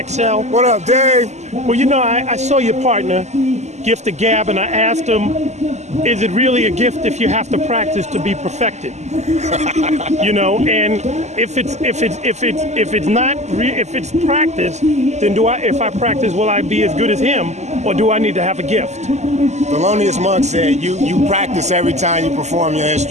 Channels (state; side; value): late; left; 0.33 ms